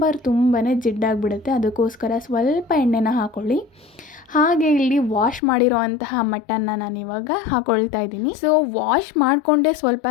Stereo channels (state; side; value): drops out; right; at 5.4 s